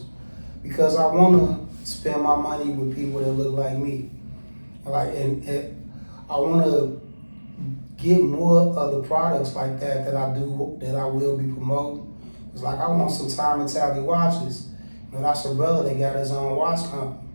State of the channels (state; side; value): inverted; both; correlation -1.00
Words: because I want to spend my money with people that look like me. Like, and I want to get more of the products like that I will be promoting. It's like I want some Time and Tally watches. You know, that's a brother that got his own watch company.